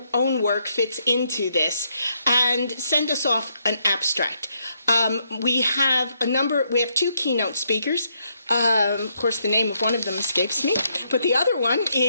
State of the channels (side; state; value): both; inverted; correlation -0.76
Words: own work fits into this and send us off an abstract. We have two keynote speakers. Of course, the name of one of them escapes me, but the other one